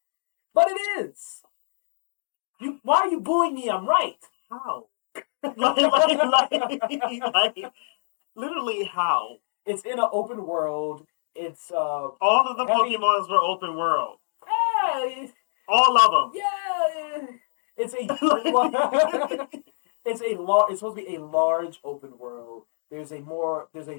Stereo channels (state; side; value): silent; right; digital silence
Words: But it is. Why are you booing me? I'm right. How? like, literally how? It's in an open world. It's All of the heavy- Pokemons were open world. Yeah, All of them. yeah. It's a it's supposed to be a large open world. There's a